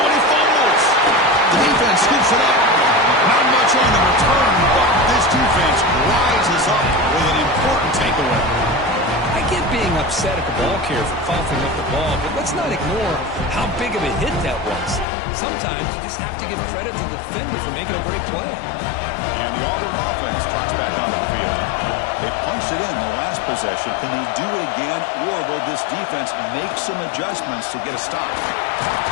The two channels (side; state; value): right; drops out; at 15.1 s